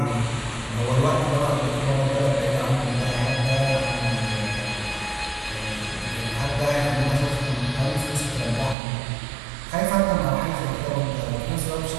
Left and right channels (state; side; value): drops out; left; at 8.8 s